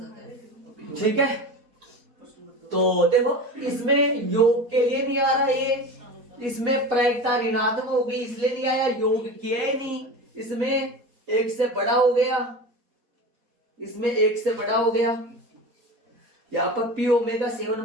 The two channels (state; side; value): late; left; 4.2 ms